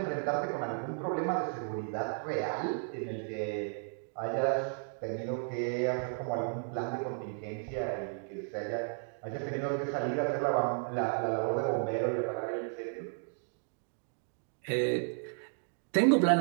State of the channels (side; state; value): left; silent; 55 dB below the other